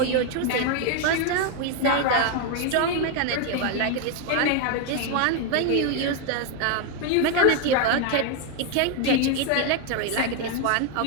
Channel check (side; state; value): both; different; correlation 0.01